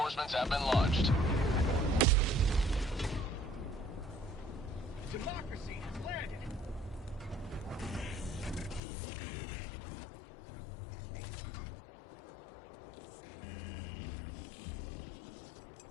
have been launched. Democracy has landed.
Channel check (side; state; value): right; drops out; at 8.8 s